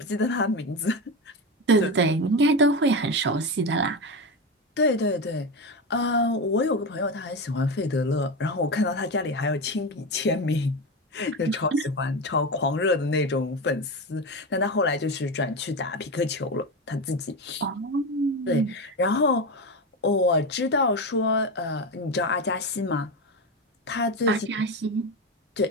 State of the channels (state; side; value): normal; both; correlation 0.18